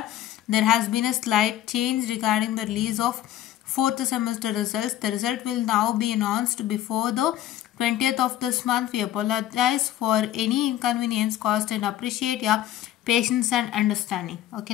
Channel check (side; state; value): right; quieter; 12.7 dB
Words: there has been a slight change regarding the release of 4th semester results. The result will now be announced before the 20th of this month. We apologize for any inconvenience caused and appreciate your patience and understanding.